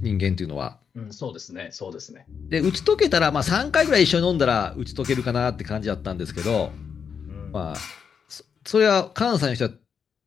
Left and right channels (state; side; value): quieter; right; 6.7 dB